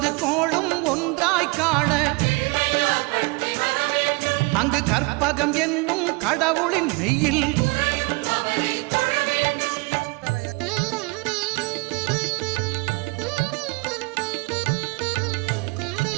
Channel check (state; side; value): quieter; left; 27.2 dB